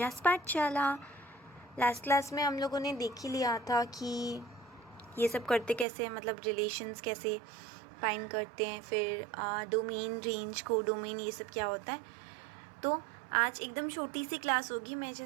Pathshala. Last class में हम लोगों ने देख ही लिया था कि ये सब करते कैसे हैं, मतलब रिलेशंस कैसे फाइंड करते हैं, फिर डोमेन, रेंज, को डोमेन, ये सब क्या होता है। तो आज एकदम छोटी सी क्लास होगी। मैं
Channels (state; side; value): drops out; left; at 5.9 s